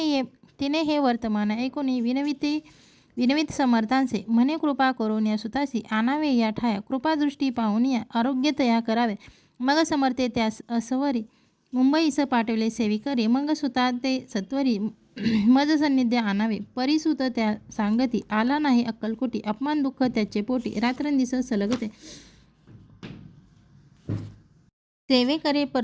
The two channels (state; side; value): identical; both; correlation 1.00